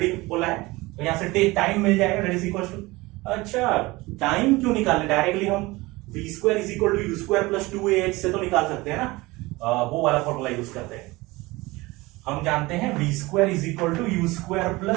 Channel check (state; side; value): quieter; left; 21.6 dB